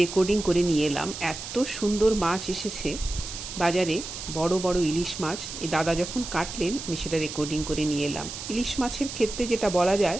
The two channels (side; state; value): right; noise; hiss, 9 dB below the sound